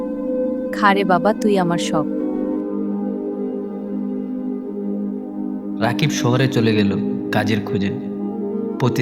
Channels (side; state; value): both; identical; correlation 1.00